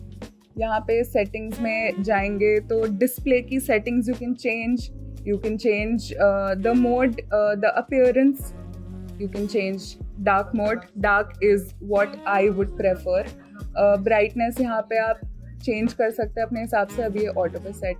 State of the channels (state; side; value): identical; both; correlation 1.00